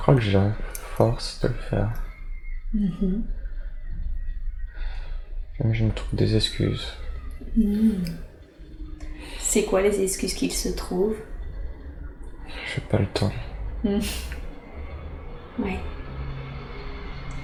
que j'ai la force de le faire. Même je me trouve des excuses. C'est quoi les excuses qu'il se trouve? J'ai pas le temps. Oui.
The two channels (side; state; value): both; identical; correlation 1.00